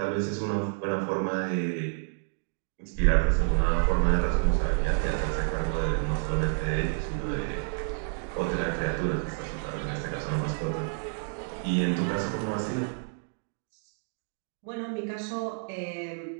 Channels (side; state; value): left; silent; 58 dB below the other